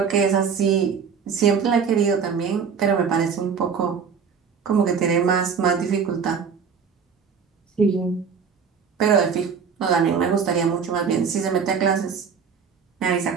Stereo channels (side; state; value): left; quieter; 6.3 dB